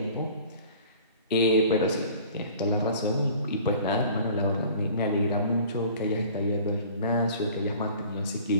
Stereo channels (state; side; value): inverted; both; correlation -0.48